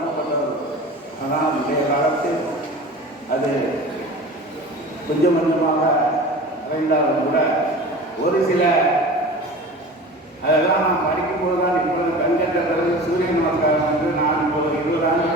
ஆனால் இன்றைய காலத்தில் அது கொஞ்சம் கொஞ்சமாக அடைந்தாலும் கூட ஒரு சில அதெல்லாம் நாம் படிக்கும்போது தான் இப்பொழுது கண்கட்ட பிறகு சூரிய நமஸ்காரம் என்று நான் இப்போது 20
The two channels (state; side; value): normal; both; correlation 0.37